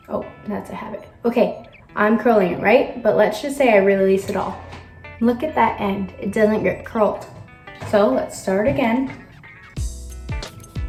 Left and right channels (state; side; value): identical; both; correlation 1.00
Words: Oh, that's a habit. Okay, I'm curling it, right? But let's just say I release it all. Look at that end. It doesn't get curled. So let's start again.